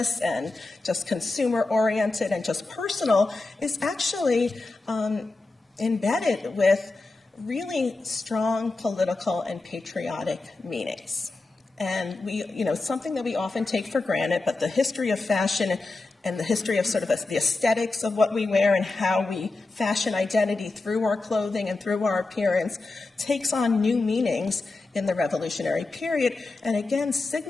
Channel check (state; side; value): quieter; right; 3.4 dB